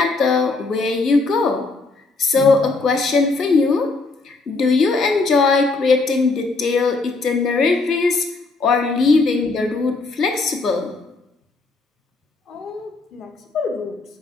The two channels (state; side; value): quieter; right; 3.7 dB